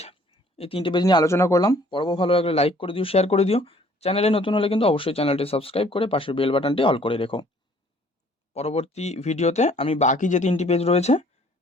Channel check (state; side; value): normal; both; correlation 0.58